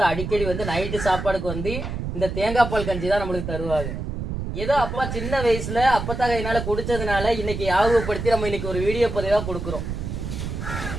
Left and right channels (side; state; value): right; noise; rumble, 5 dB below the sound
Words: அடிக்கடி வந்து நைட்டு சாப்பாடுக்கு வந்து இந்த தேங்காய் பால் கஞ்சி தான் நம்மளுக்கு தருவாங்க. ஏதோ அப்பா சின்ன வயசுல அப்பத்தா கையினால குடிச்சதுனால இன்னைக்கு ஞாபகப்படுத்தி நம்ம இன்னைக்கு ஒரு வீடியோ பதிவா கொடுக்குறோம்.